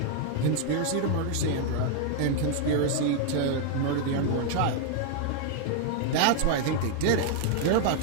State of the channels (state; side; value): different; both; correlation 0.00